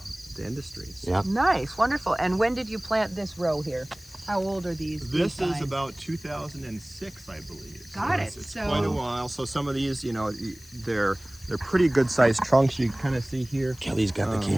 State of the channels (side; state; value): left; noise; hiss, 22 dB below the sound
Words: industry. So. Yeah. Nice, wonderful. And when did you plant this row here? How old are these? This vines? is about 2006, I believe. Got it. It's So- quite a while. So some of these, you know, they're pretty good sized trunks. You can kind of see here. Kelly's got the